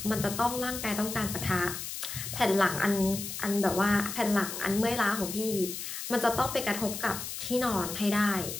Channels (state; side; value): noise; left; hiss, 7 dB below the sound